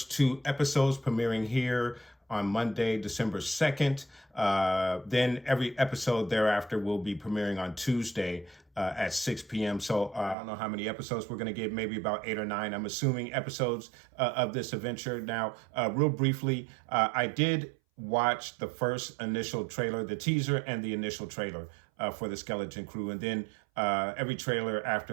two episodes premiering here on Monday, December 2nd. Then every episode thereafter will be premiering on Tuesday at 6 p.m. So I don't know how many episodes we're going to get, maybe about 8 or 9. I'm assuming episodes of this adventure. Now, real briefly, I did watch the first initial trailer, the teaser and the initial trailer for the Skeleton Crew. And then every trailer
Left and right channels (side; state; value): left; drops out; at 10.4 s